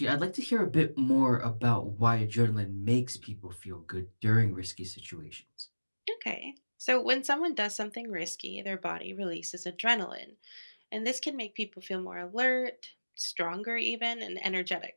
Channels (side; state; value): both; inverted; correlation -1.00